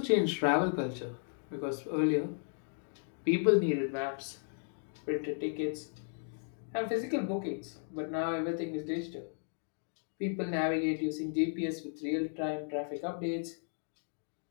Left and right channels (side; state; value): right; silent; digital silence